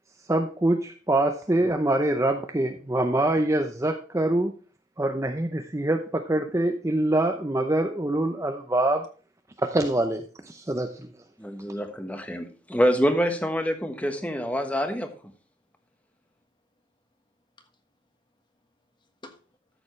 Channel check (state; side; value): normal; both; correlation 0.78